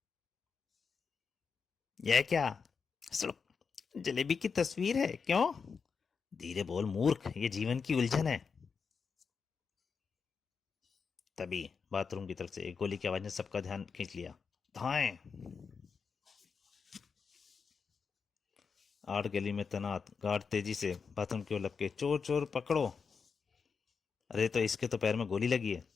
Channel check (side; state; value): right; quieter; 5.6 dB